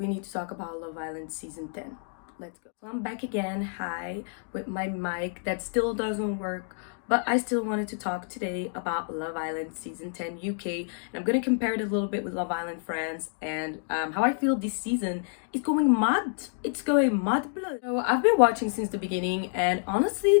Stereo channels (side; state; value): right; silent; digital silence